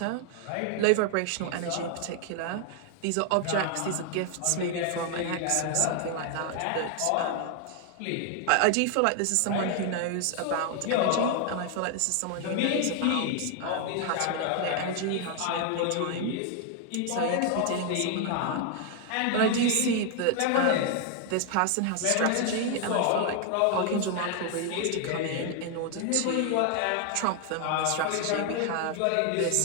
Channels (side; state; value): both; different; correlation 0.00